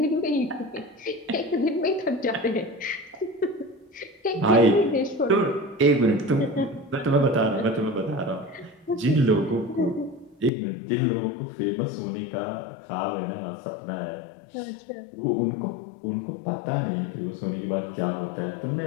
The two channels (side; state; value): right; drops out; at 10.5 s